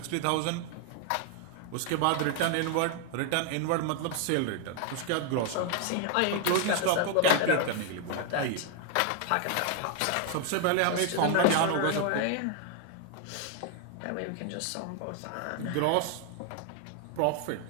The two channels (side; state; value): both; different; correlation 0.00